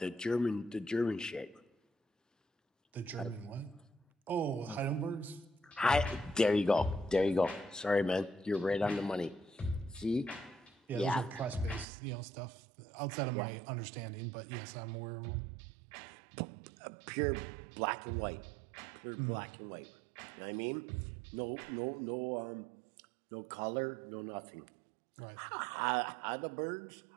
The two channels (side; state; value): left; drops out; at 11.9 s